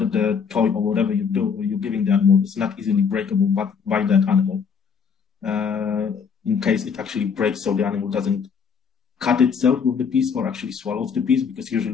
the toy or whatever you're giving the animal is not easily breakable by that animal. In case it actually breaks, so the animal doesn't cut itself with the piece or actually swallows the piece, because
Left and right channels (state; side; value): quieter; right; 6.3 dB